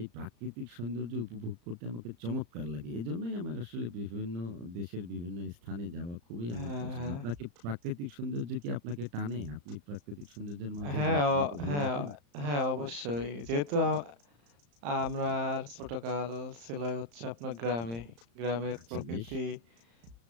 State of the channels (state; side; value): late; left; 35 ms